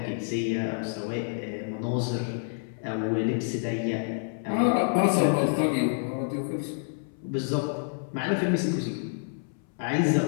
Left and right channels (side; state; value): right; silent; 59 dB below the other